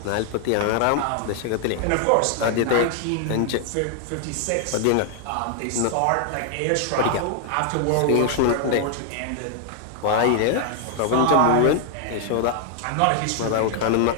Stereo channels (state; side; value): different; both; correlation 0.00